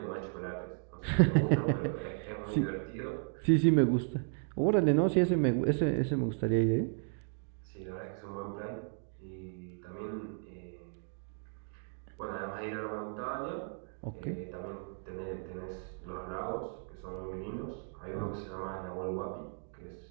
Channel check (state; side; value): silent; left; 55 dB below the other